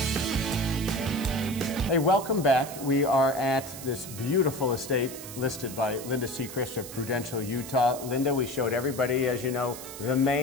Hey, welcome back. We are at this beautiful estate listed by Linda Seacrest of Prudential, Utah. Linda, we showed everybody, as you know, the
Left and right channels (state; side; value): noise; right; hiss, 12 dB below the sound